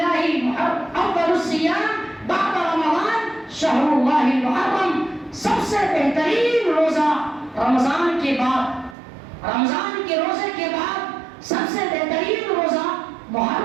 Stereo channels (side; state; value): left; drops out; at 9.0 s